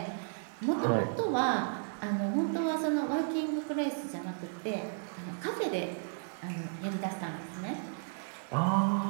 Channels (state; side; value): silent; left; digital silence